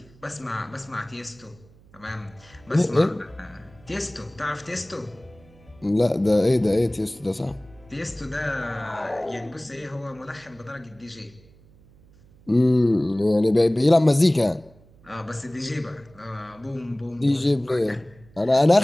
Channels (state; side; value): noise; right; hum, 27 dB below the sound